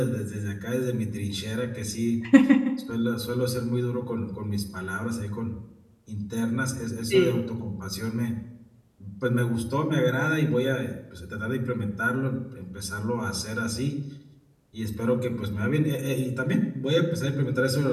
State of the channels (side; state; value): both; identical; correlation 1.00